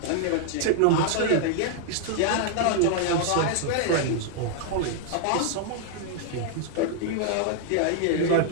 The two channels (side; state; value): both; different; correlation -0.01